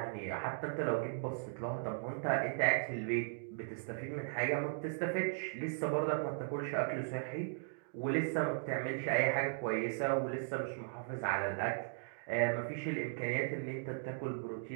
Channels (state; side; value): silent; left; digital silence